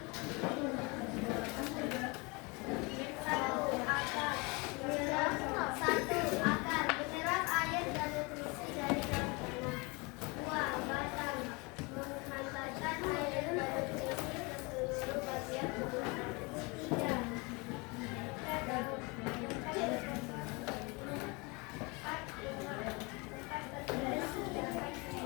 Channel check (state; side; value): quieter; right; 28.0 dB